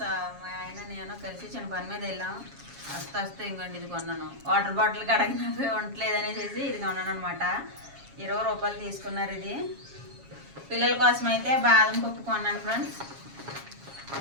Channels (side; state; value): left; late; 7.3 ms